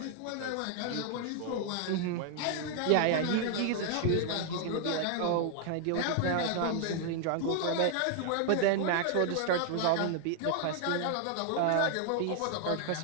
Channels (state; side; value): different; both; correlation 0.00